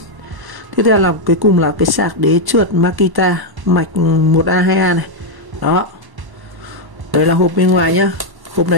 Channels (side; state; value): left; late; 1.0 ms